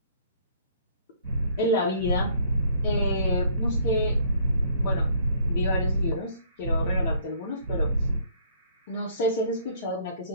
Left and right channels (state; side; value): inverted; both; correlation -0.60